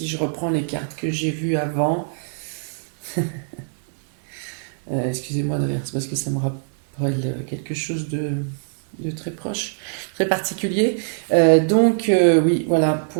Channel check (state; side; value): silent; left; 63 dB below the other